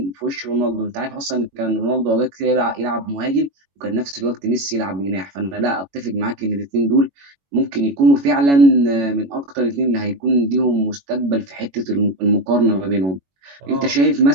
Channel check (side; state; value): left; late; 21 ms